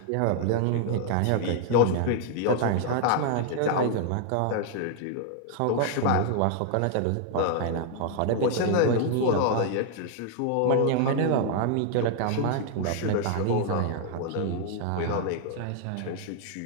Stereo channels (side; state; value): both; different; correlation 0.00